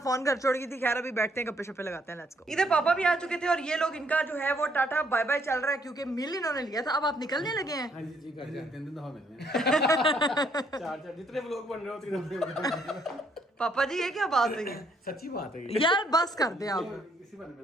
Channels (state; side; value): normal; both; correlation 0.69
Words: घर छोड़ गई थी। खैर अभी बैठते हैं, गप्पे शप्पे लगाते हैं, लेट्स गो। इधर पापा भी आ चुके थे और ये लोग, इनका जो है वो टाटा बाय बाय चल रहा है क्योंकि मिल इन्होंने लिया था। अब आप निकलने लगे हैं। हाँ जी घर जाते हैं, दफा मिलने। चार जितने व्लॉग बन रहे हो उतने पापा जी ये क्या बात है? सच्ची बात है यार बस कर दे आप। इसी बारे में